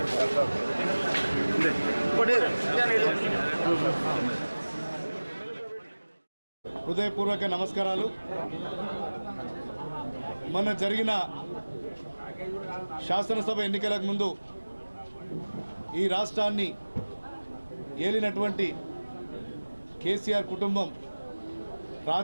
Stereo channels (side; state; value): both; inverted; correlation -1.00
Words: హృదయపూర్వక నమస్కారాలు. మొన్న జరిగిన శాసనసభ ఎన్నికలకు ముందు ఈ రాష్ట్రాన్ని ఏలినటువంటి కేసీఆర్ కుటుంబం